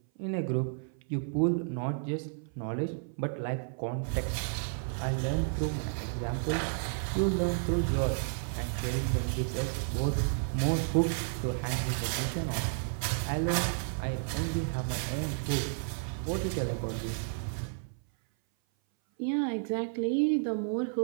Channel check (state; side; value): silent; left; 56 dB below the other